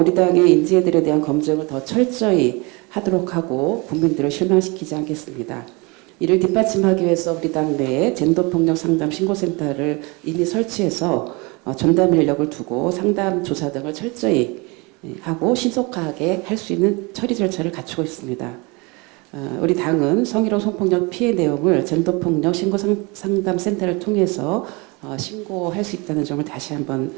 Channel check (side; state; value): left; quieter; 27.4 dB